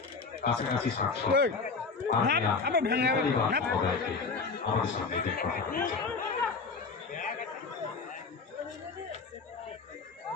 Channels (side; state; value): right; quieter; 4.6 dB